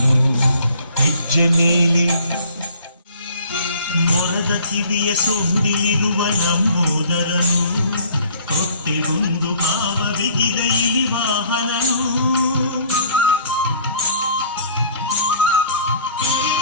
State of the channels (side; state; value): both; inverted; correlation -0.54